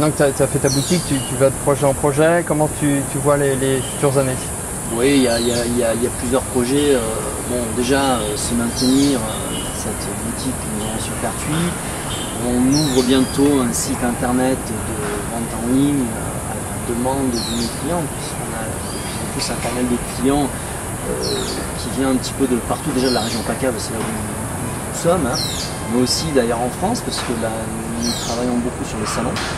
que tu as fait ta boutique, tu vas de projet en projet. Comment tu vois les futures années? Oui, il y a plusieurs projets. Déjà, se maintenir dans cette boutique que nous avons sur Pertuis. On ouvre bientôt un site internet de vente en ligne à la demande de nos clients, puisqu'on a de plus en plus un panel de clients qui vient un petit peu de partout, déjà de la région PACA, c'est là où nous sommes, mais aussi d'ailleurs en France, parce que nous travaillons beaucoup sur les salons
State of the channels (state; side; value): identical; both; correlation 1.00